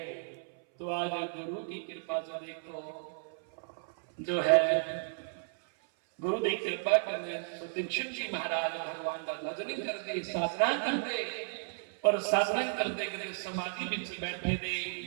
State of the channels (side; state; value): left; silent; 55 dB below the other